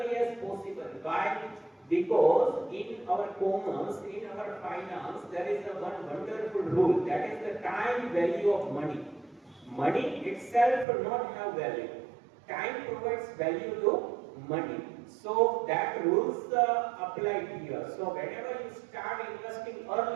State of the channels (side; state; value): left; drops out; at 10.9 s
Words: as possible. Why? Because in our commerce, in our finance, there is a one wonderful rule, that is the time value of money. Money itself does not have value. Time provides value to money. So that rules apply here. So whenever you start investing